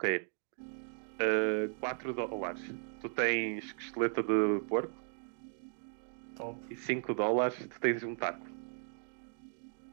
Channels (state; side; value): silent; left; digital silence